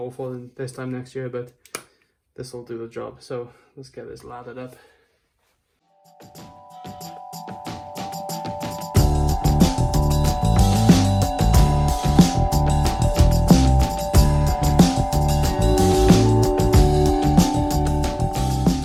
this time next year, but this will do the job. So let's get this lathered up.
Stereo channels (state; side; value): identical; both; correlation 1.00